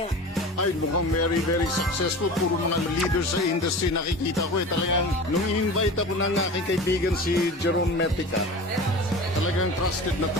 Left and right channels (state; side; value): normal; both; correlation 0.35